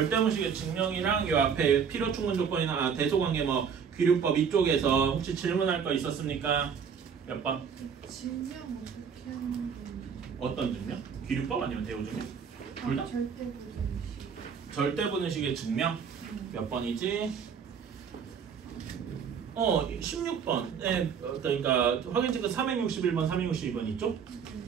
증명이랑 요 앞에 필요 충분 조건이나 대소관계 귀류법 이쪽에서 혹시 질문할 거 있었습니까? 몇 번? 증명 어떻게 하는 건지. 어떤 증명? 귀류법 아니면 대우 증명? 둘 다? 절대부등식. 절대부등식의 증명? 몇 번이지? 16번. 네, 그러니까 확인 체크 361번, 362번 있죠?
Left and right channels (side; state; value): left; quieter; 6.9 dB